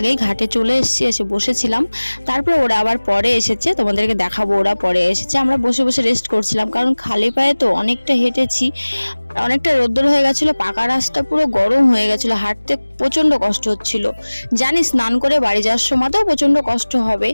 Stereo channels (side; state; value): both; inverted; correlation -1.00